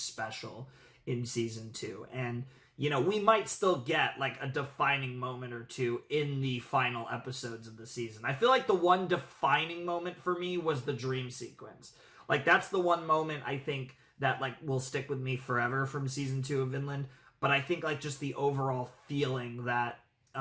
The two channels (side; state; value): both; identical; correlation 1.00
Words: in Season 2. And, you know, we might still get, like, a defining moment or two in the final episodes of the season. I feel like the one defining moment for me was the dream sequence. Like, that's the one moment I think that, like, will stick with me forever from Season 2 of Vinland. But I think, like, just the overall feeling that